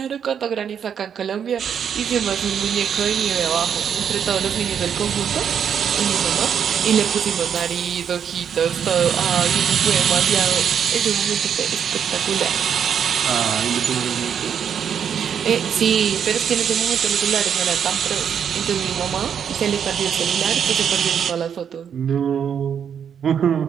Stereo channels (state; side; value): quieter; left; 8.0 dB